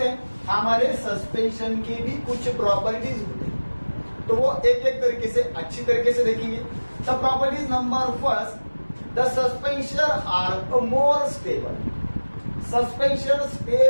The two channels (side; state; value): both; inverted; correlation -1.00